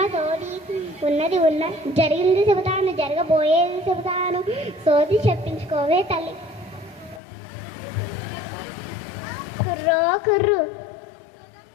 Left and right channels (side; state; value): right; drops out; at 7.2 s